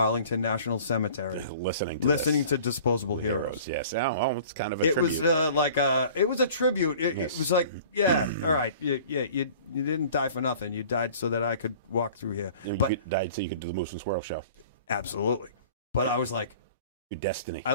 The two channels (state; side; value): inverted; both; correlation -0.47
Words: National Cemetery, listening to Disposable Heroes. Yes. Oh, it's kind of a tribute. Was it was a tribute. It was like, all right, you didn't die for nothing. You died so that I could walk through here. You died so you could do the Moose and Squirrel show. Absolutely. But I was like, your destiny. I